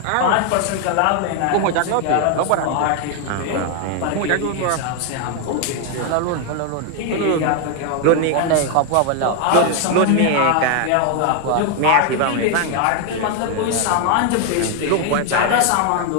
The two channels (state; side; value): different; both; correlation 0.01